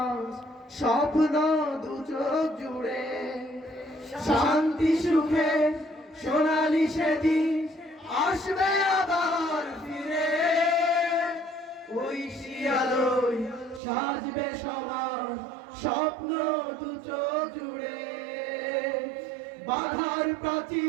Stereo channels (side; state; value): left; drops out; at 13.8 s